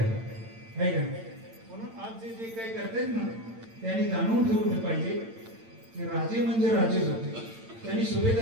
आहे का? म्हणून आज जे जे काही करतायत ना त्यांनी जाणून ठेवलं पाहिजे की राजे म्हणजे राजेच होते. त्यांनी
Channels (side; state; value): left; late; 8.9 ms